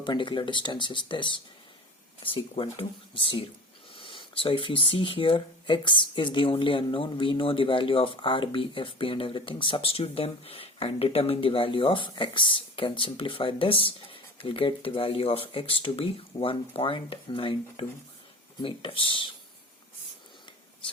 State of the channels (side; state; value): both; normal; correlation 0.36